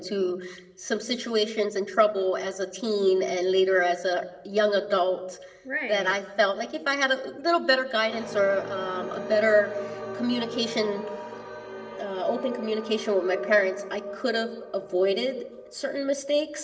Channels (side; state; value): both; identical; correlation 1.00